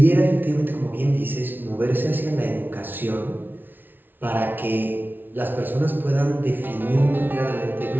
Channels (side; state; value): left; late; 0.093 ms